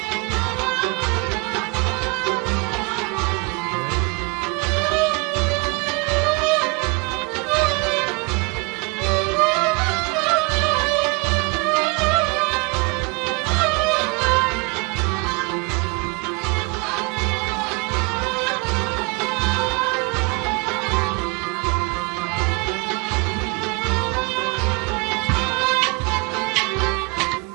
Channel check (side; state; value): left; quieter; 28.7 dB